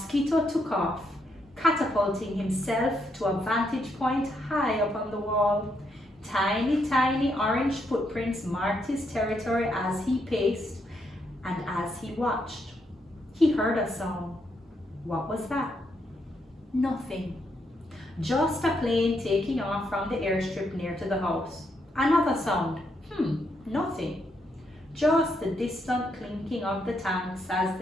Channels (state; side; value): normal; both; correlation 0.78